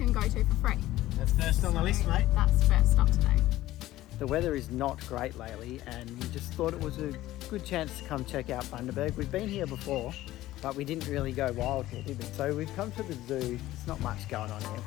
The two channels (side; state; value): right; quieter; 15.6 dB